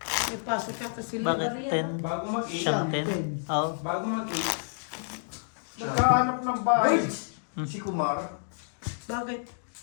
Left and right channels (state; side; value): silent; right; digital silence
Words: May pasok ka kasi. Bakit 10? Bago mag-8, Siyang 10? Oo. bago mag-8, nagkahanap ng bahay. Si Kumar. Bakit?